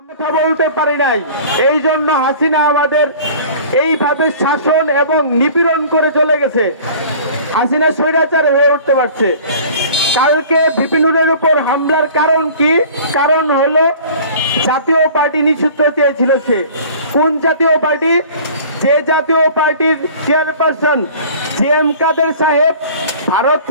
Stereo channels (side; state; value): both; inverted; correlation -0.45